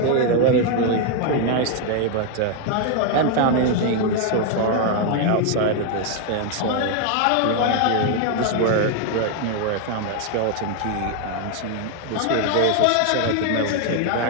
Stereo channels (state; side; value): different; both; correlation 0.01